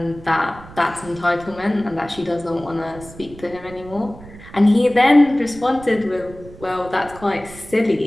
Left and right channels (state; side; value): noise; right; rumble, 18 dB below the sound